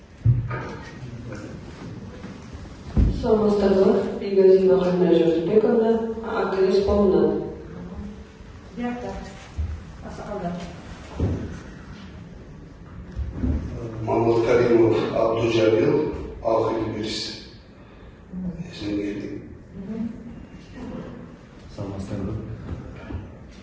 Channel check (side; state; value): both; identical; correlation 1.00